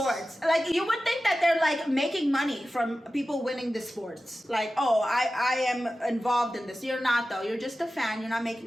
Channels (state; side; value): normal; both; correlation 0.94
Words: Like, you would think that they're like making money from people winning the sports. Like, oh, I am involved in this. You're not though. You're just a fan. You're not